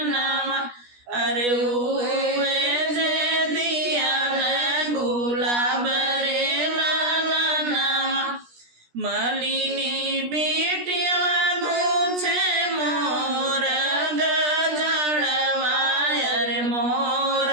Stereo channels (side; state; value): left; late; 17 ms